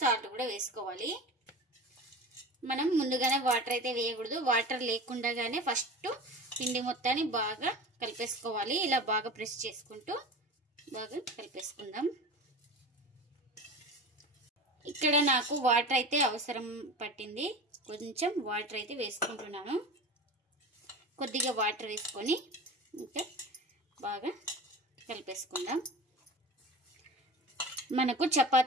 కూడా వేసుకోవాలి. మనం ముందుగానే వాటర్ అయితే వేయకూడదు, వాటర్ లేకుండానే ఫస్ట్ పిండి మొత్తాన్ని బాగా కలిపేసుకోవాలి. ఇలా బాగా ప్రెస్ చేసుకుంటూ బాగా కలిపేసుకుందాం. ఇక్కడ నాకు వాటర్ అయితే అవసరం పట్టింది, కొంచెం వాటర్ అయితే వేసుకుంటున్నాను. కొద్దిగా వాటర్ వేసుకొని ఇంకా బాగా కలిపేసుకుందాం. మనకు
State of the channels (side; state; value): both; normal; correlation 0.32